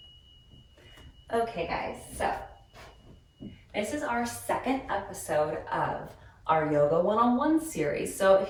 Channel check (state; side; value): identical; both; correlation 1.00